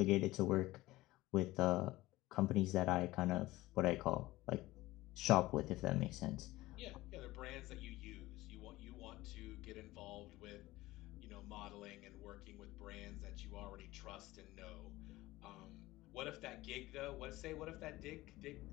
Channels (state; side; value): quieter; right; 18.1 dB